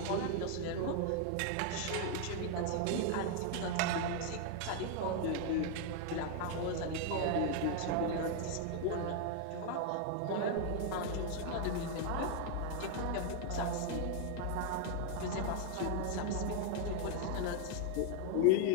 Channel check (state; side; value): different; both; correlation 0.00